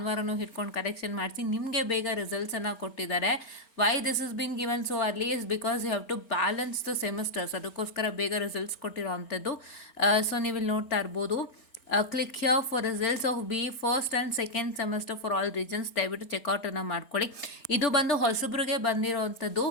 ಹಿಡ್ಕೊಂಡು ಕರೆಕ್ಷನ್ ಮಾಡಿಸಿ ನಿಮಗೆ ಬೇಗ ರಿಸಲ್ಟ್ಸನ್ನು ಕೊಟ್ಟಿದ್ದಾರೆ. Why this is been given so early is because you have to balance the semesters, ಅದಕ್ಕೋಸ್ಕರ ಬೇಗ ರಿಸಲ್ಟ್ಸ್ ಕೊಟ್ಟಿರೋ ಅಂಥದ್ದು. ಸೊ ನೀವು ಇಲ್ಲಿ ನೋಡ್ತಾ ಇರ್ಬೋದು, click here for results of B first and second semester for all regions. ದಯವಿಟ್ಟು ಚೆಕ್ಔಟನ್ನು ಮಾಡ್ಕೊಳ್ಳಿ. ಇದು ಬಂದು ಹೊಸಬ್ರಿಗೆ ಬಂದಿರೋವಂಥದ್ದು.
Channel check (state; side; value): late; right; 4.4 ms